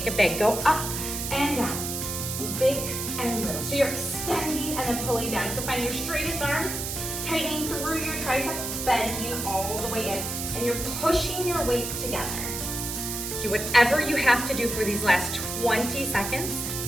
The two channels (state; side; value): noise; right; hiss, 4 dB below the sound